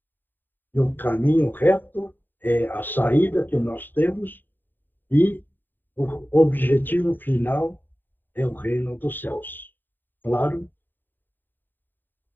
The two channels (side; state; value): right; late; 0.091 ms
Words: E o caminho reto é a saída que nós temos e o objetivo final é o reino dos céus. Claro?